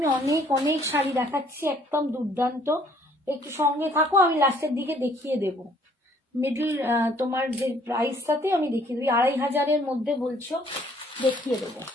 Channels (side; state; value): both; normal; correlation 0.61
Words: অনেক অনেক শাড়ি দেখাচ্ছি, একদম দুর্দান্ত, একটু সঙ্গে থাকো, আমি লাস্টের দিকে দেখিয়ে দেব। মিডল তোমার যে প্রাইসটাতে আমি দেখিয়ে দেবো, 2500-এর মধ্যে বলছো, দেখিয়ে দেবো।